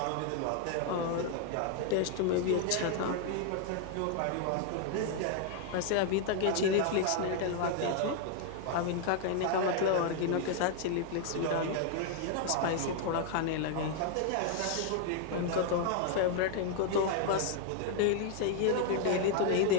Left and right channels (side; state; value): both; different; correlation 0.00